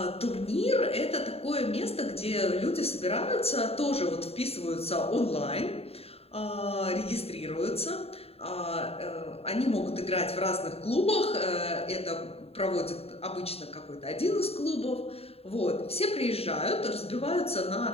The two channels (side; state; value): right; late; 0.29 ms